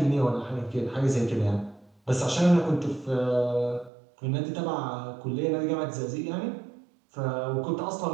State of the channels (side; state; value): left; drops out; at 3.9 s